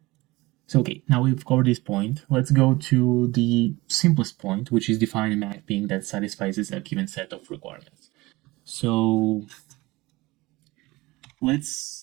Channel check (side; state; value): left; quieter; 21.1 dB